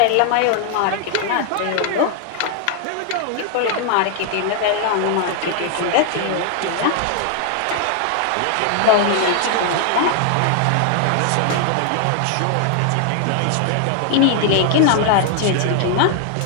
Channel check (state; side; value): different; both; correlation 0.00